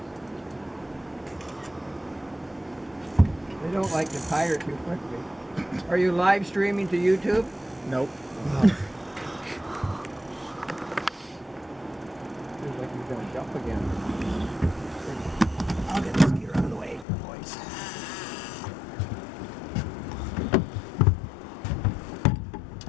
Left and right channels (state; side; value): drops out; right; at 17.1 s